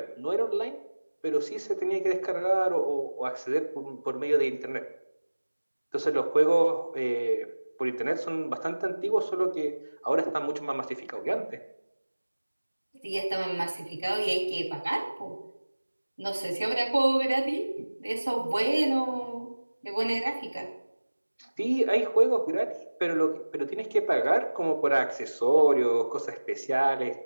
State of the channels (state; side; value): inverted; both; correlation -1.00